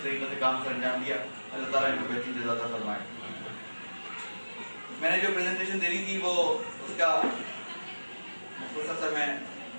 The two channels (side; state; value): both; inverted; correlation -1.00